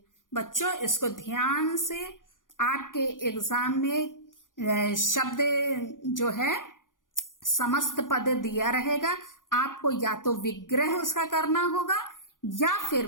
बच्चों इसको ध्यान से, आपके एग्जाम में शब्द जो है समस्त पद दिया रहेगा, आपको या तो विग्रह उसका करना होगा या फिर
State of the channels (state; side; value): late; right; 0.89 ms